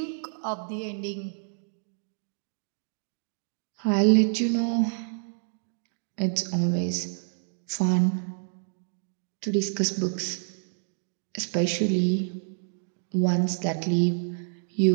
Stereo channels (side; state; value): left; silent; digital silence